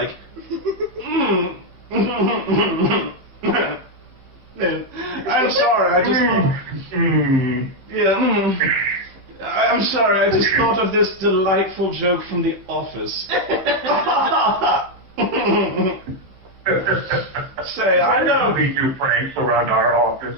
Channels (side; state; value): left; late; 15 ms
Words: I'm sorry, I just thought, I'm sorry, I just thought of this delightful joke from The Office. Say, I know we do pranks around our